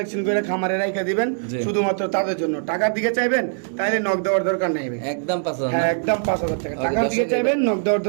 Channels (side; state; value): left; silent; digital silence